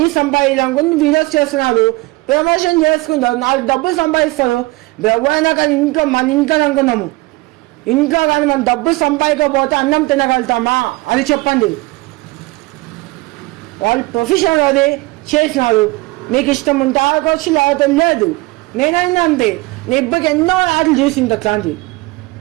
సంపాదించాలనుకుంటే వీడియోస్ చేస్తున్నారు, ప్రమోషన్ చేసుకుంటారు, 4 డబ్బులు సంపాదిస్తారు. ఎవరైనా కానీ మన ఇంట్లో అనుకున్నాము, ఇంట్లో కానీ మనం డబ్బులు సంపాదించకపోతే అన్నం తినగలుగుతామా అది చెప్పండి. వాళ్ళు ప్రొఫెషనల్ అది చేసినారు, మీకు ఇష్టం ఉంటే ఆడుకోవచ్చు, లేకపోతే లేదు. నేనైనా అంతే, నేను ఇప్పటికి ఎన్నో యాడ్లు చూసింది అట్లాంటి.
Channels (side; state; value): left; quieter; 22.0 dB